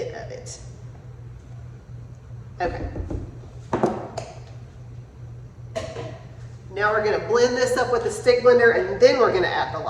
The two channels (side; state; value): both; identical; correlation 1.00